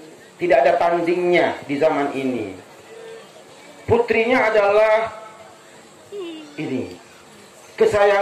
Tidak ada tandingnya di zaman ini. Putrinya adalah ini,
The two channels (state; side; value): identical; both; correlation 1.00